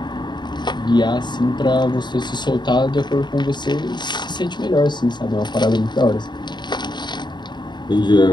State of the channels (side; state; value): right; late; 0.22 ms